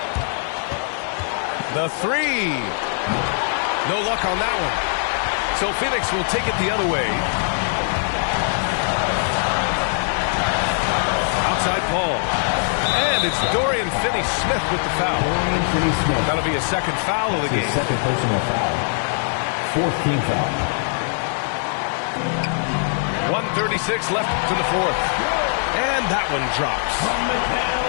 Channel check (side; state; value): right; silent; digital silence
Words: The three. No luck on that one. So Phoenix will take it the other way. Outside Paul. And it's Dorian Finney-Smith with the foul. Dorian Finney-Smith. That'll be a second foul of the game. Second personal foul. Fourth team foul. 1:36 left to the fourth. And that one drops.